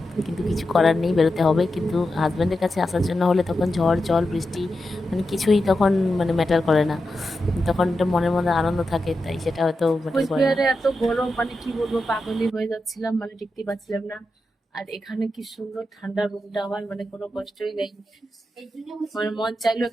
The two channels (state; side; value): normal; both; correlation 0.89